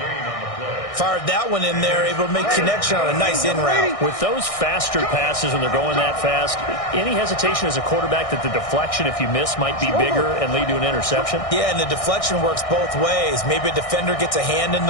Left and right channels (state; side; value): late; right; 1.6 ms